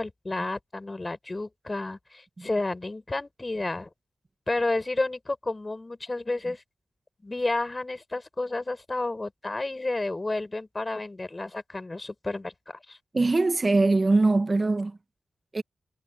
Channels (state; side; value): normal; both; correlation 0.96